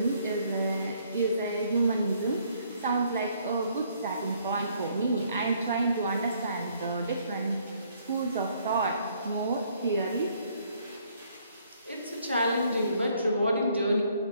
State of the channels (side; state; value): both; inverted; correlation -0.66